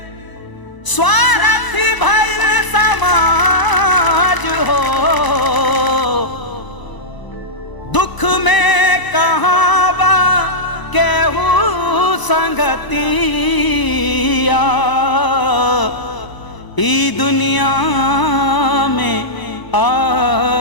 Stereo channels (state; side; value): late; right; 1.0 ms